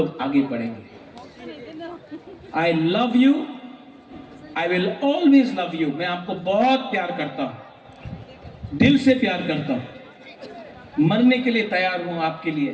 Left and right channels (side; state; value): both; identical; correlation 1.00